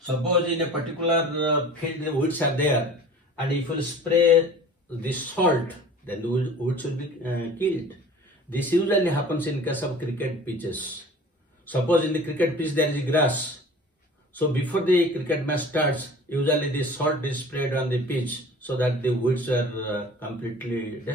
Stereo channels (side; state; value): both; normal; correlation 0.43